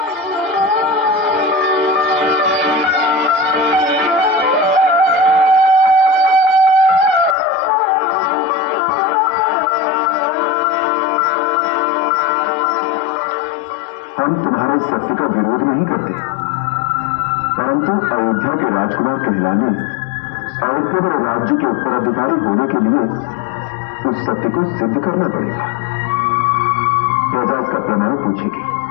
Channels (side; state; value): right; drops out; at 7.4 s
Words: हम तुम्हारे सत्य का विरोध नहीं करते, परंतु अयोध्या के राजकुमार कहलाने और केवल राज्य के उत्तराधिकारी होने के लिए उस सत्य को सिद्ध करना पड़ेगा। प्रजा इसका प्रमाण पूछेगी